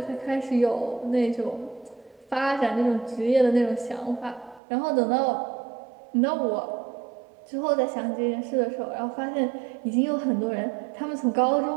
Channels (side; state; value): left; drops out; at 4.6 s